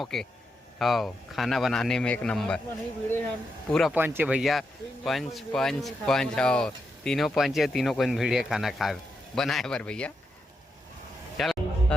के। हाँ खाना बनाने में एक नंबर, पूरा पंच है भैया, पंच पंच पंच। हाँ तीनों पंच है, तीनों को भीड़िया खाना खा बनाए बर भैया। चल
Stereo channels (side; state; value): both; normal; correlation 0.84